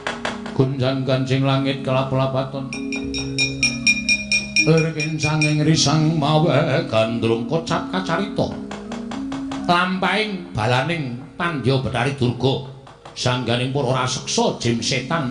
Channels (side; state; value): both; identical; correlation 1.00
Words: Gunjang Kanjeng langit kelap-lapaton. Lerkin sanging risang mawe gandrung kocap kacarita. Lampahing balaning Pandya Betari Durga. Sangganing para raseksa jim setan